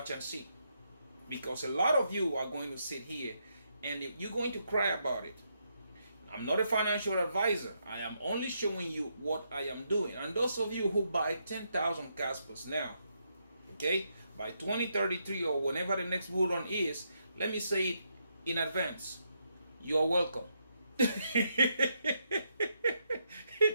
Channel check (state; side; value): inverted; both; correlation -0.79